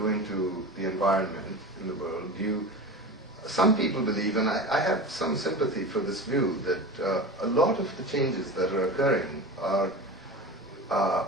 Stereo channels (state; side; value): normal; both; correlation 0.30